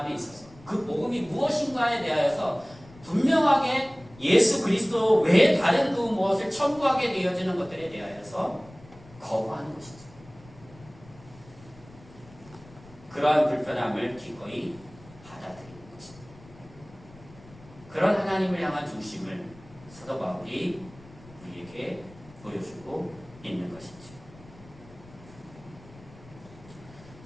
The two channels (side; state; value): left; noise; rumble, 22 dB below the sound